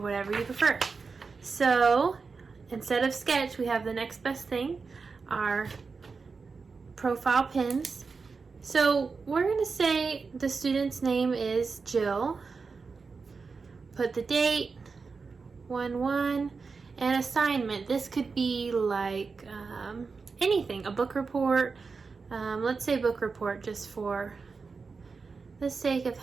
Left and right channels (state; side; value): quieter; left; 4.7 dB